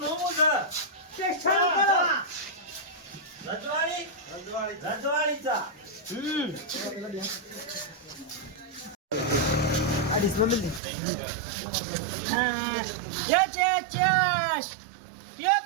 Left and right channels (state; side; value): drops out; left; at 10.8 s